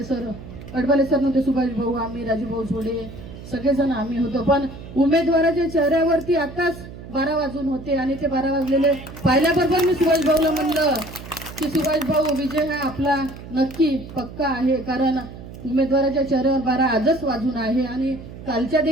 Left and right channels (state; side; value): noise; right; hum, 14 dB below the sound